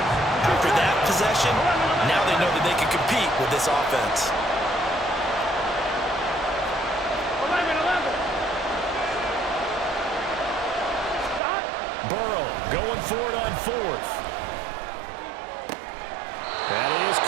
After that possession, now they know that they can compete with this offense. Burrow going for it on 4th. That is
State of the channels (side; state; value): left; drops out; at 11.4 s